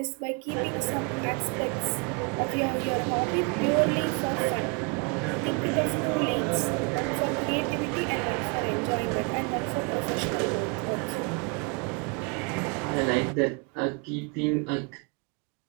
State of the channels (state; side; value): quieter; left; 33.4 dB